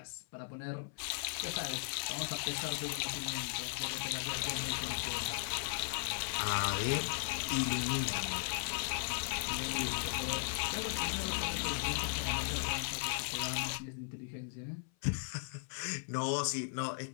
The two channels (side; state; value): right; silent; 53 dB below the other